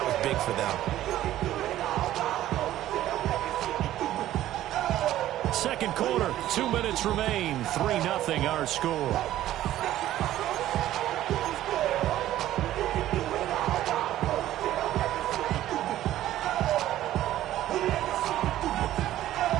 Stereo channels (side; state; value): left; quieter; 13.5 dB